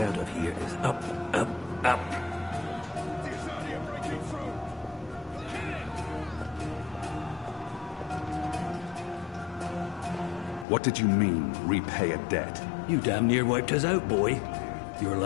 out of here is up, up, up. What did you mean, repay a debt? You damn near wiped us out, boy. Your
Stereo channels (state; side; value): drops out; right; at 10.7 s